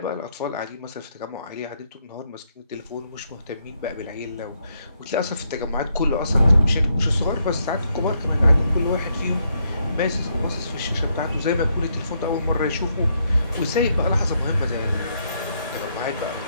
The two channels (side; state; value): both; inverted; correlation -0.76